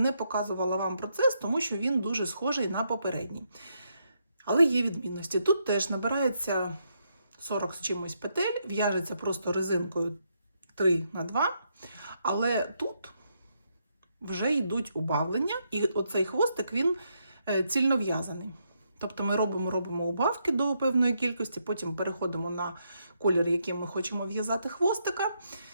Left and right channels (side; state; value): both; inverted; correlation -0.78